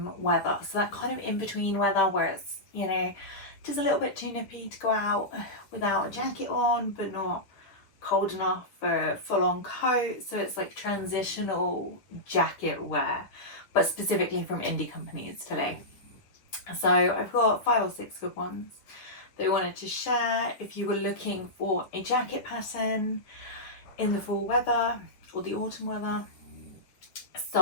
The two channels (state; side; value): late; right; 10 ms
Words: weather. So that kind of in between weather where it's, you know, just a little bit too nippy to go out without a jacket on, but not cold enough for a full-on coat. So it's like transitional jacket wear, but specifically from indie companies today. So I've got 5 or 6 good ones that I wanted to share if you were looking for a jacket pattern in the fall weather or the autumn weather.